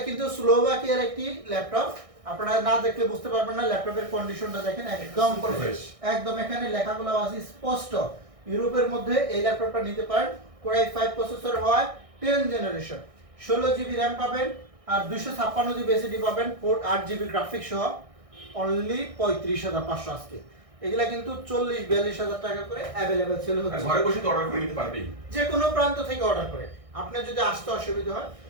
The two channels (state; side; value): late; left; 1.6 ms